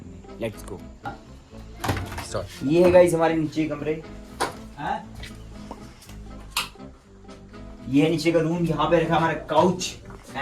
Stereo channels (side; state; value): both; identical; correlation 1.00